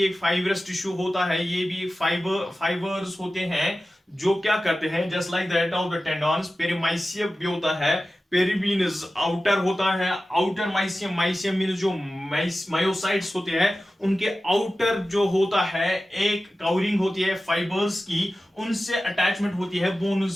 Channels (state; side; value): normal; both; correlation 0.95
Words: एक फाइबरस टिश्यू होता है. ये भी फाइबर्स होते हैं जो क्या करते हैं, just like that of the tendons. Perimysium भी होता है. पेरी मीन्स आउटर होता है. आउटर माइसियम मीन्स जो मायोसाइट्स होते हैं उनके आउटर जो होता है एक कवरिंग होती है फाइबर्स की, उनसे अटैचमेंट होती है